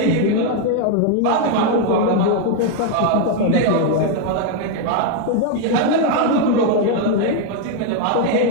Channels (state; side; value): different; both; correlation 0.01